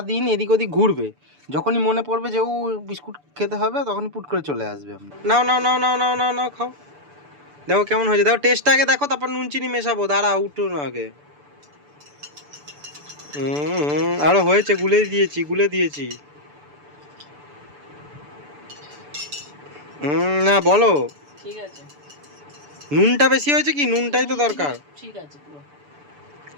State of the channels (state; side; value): late; left; 6.9 ms